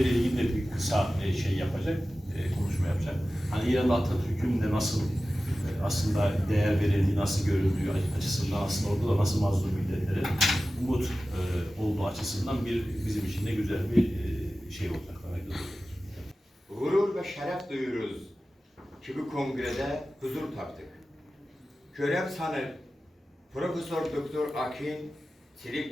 ilgili de bir kısa şey yapacak, konuşma yapacak. Hani İran'da Atatürk'ün de nasıl aslında değer verildiği, nasıl görüldüğü açısından aslında orada da nasıl mazlum milletlere umut olduğu açısından bizim için de güzel bir şey olacak. Gurur ve şeref duyuyoruz ki bu kongrede huzur taptık. Görev sanıp Profesör Doktor Akin,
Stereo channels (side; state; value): both; normal; correlation 0.95